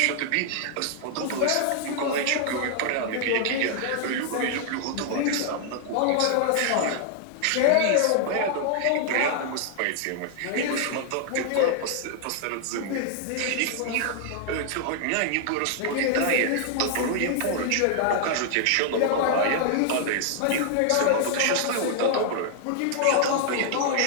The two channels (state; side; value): different; both; correlation 0.00